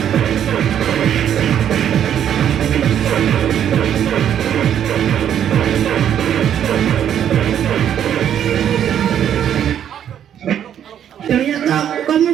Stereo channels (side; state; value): left; quieter; 9.7 dB